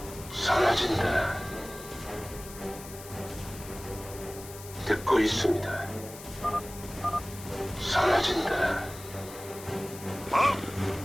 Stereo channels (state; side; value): noise; left; hiss, 15 dB below the sound